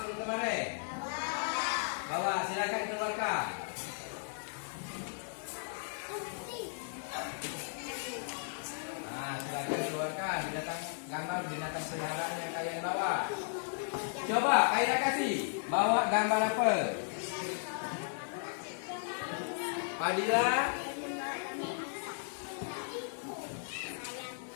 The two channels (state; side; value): silent; right; digital silence